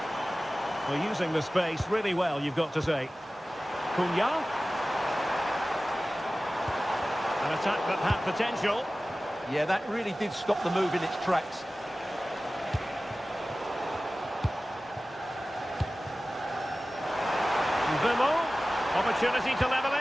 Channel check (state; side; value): normal; both; correlation 0.96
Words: Well, using the space really well, you've got to say. Cunha. An attack that had potential. Yeah, that really did stop the move in its tracks. Vimo, opportunity to level